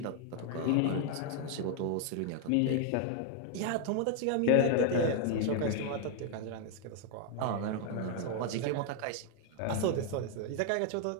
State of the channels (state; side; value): different; both; correlation 0.00